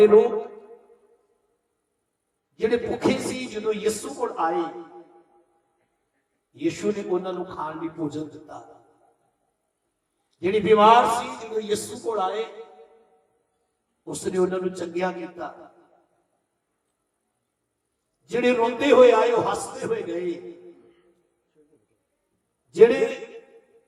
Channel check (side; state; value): both; identical; correlation 1.00